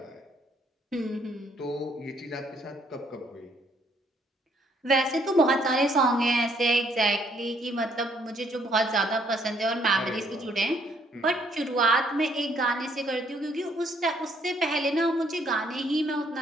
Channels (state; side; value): normal; both; correlation 0.67